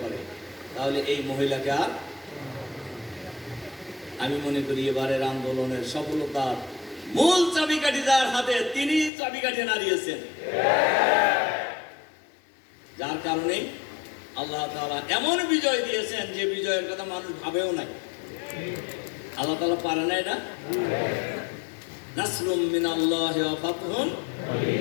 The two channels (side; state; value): right; drops out; at 9.1 s